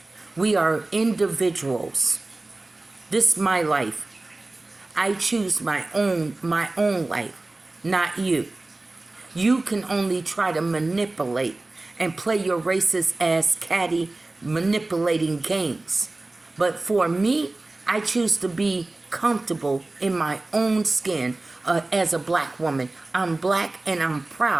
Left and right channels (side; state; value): left; quieter; 3.0 dB